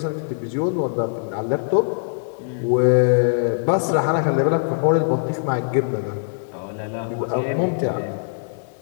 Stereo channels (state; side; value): silent; right; digital silence